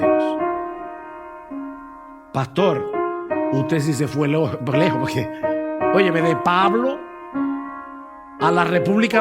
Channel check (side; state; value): both; identical; correlation 1.00